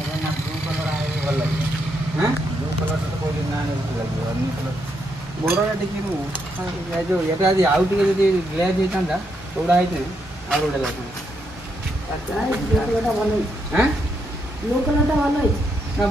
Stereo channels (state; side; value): normal; both; correlation 0.78